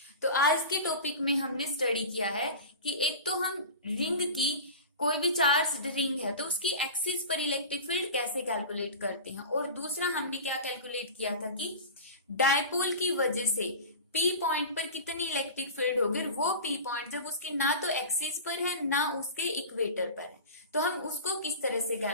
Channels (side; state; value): both; inverted; correlation -0.32